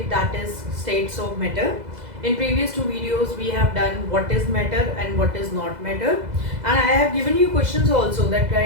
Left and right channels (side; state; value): left; late; 2.0 ms